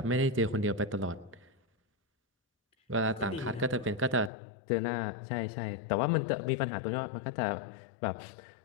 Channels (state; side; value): drops out; right; at 4.3 s